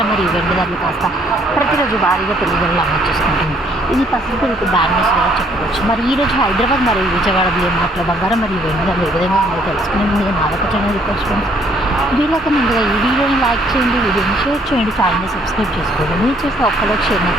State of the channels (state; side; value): normal; both; correlation 0.65